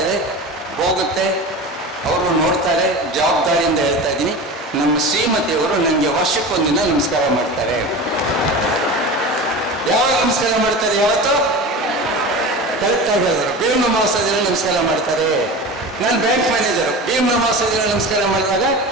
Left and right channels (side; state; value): both; normal; correlation 0.31